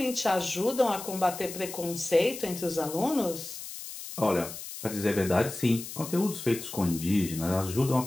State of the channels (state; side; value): noise; left; hiss, 10 dB below the sound